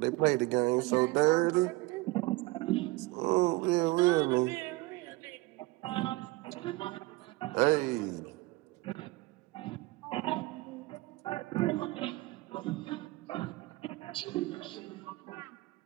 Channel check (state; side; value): quieter; left; 21.9 dB